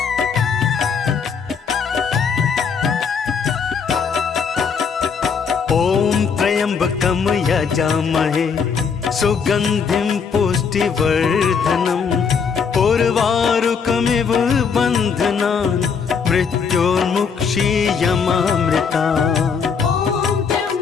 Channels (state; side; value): quieter; right; 6.1 dB